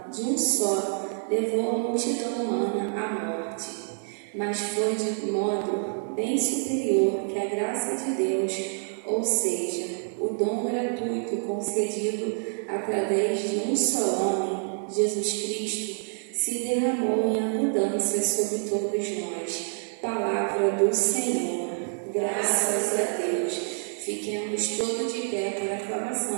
de um só levou a multidão humana à morte, mas foi de modo bem superior que a graça de Deus, ou seja, o dom gratuito concedido através de um só homem, Jesus Cristo, se derramou em abundância sobre todos nós. Palavra do Senhor. Graças a Deus. Fiquemos todos de pé para a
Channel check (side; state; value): left; silent; digital silence